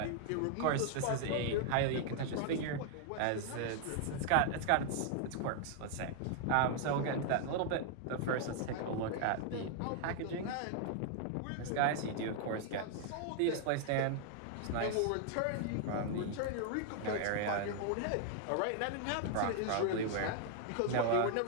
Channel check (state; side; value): different; both; correlation 0.00